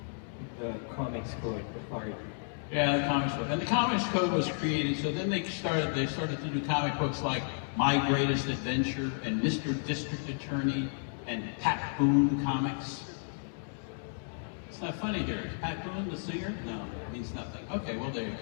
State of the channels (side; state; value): right; silent; digital silence